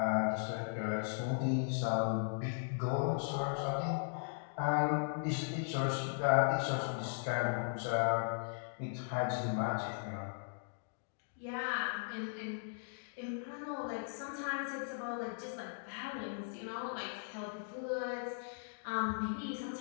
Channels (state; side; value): silent; right; digital silence